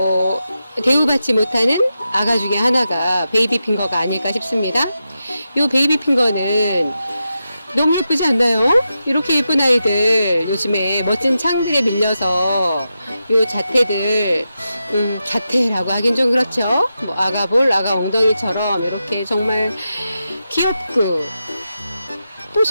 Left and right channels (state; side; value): inverted; both; correlation -0.89